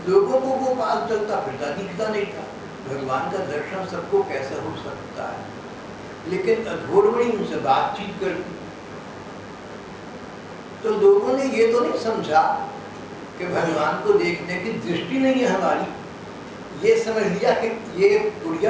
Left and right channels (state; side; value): identical; both; correlation 1.00